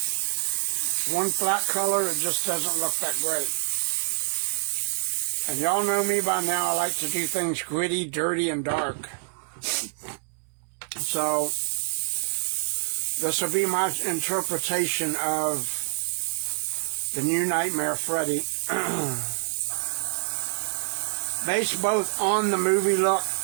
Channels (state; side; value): silent; left; 61 dB below the other